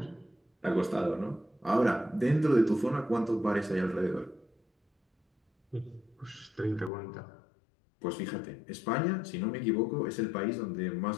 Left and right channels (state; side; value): drops out; right; at 6.9 s